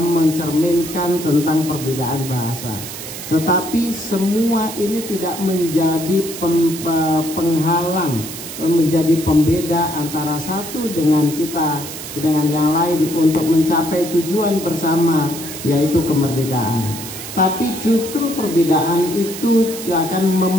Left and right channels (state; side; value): noise; right; hiss, 10 dB below the sound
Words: tentang perbedaan bahasa. Tetapi semua ini tidak menjadi penghalang, menjadi pembeda antara satu dengan yang lain untuk mencapai tujuan bersama, yaitu kemerdekaan. Tapi justru perbedaan itu akan